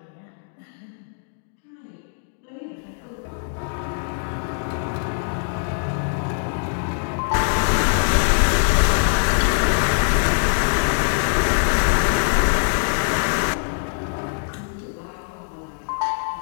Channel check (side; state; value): right; silent; 64 dB below the other